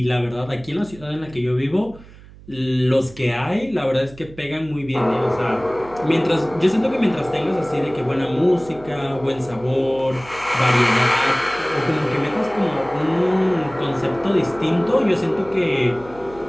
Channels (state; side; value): noise; right; hum, 21 dB below the sound